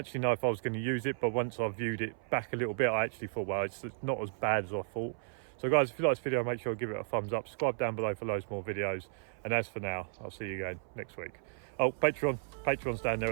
know if I was going to use it, but once I viewed it back a little bit, I actually thought, well, it's not as bad as I thought. So guys, if you like this video, make sure to give it a thumbs up, subscribe down below for loads more videos, and as for now, I'll see you again next week. Oh, Patreon's down there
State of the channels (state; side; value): silent; left; 55 dB below the other